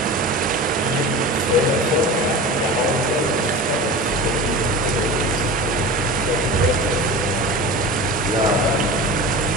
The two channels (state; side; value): normal; both; correlation 0.32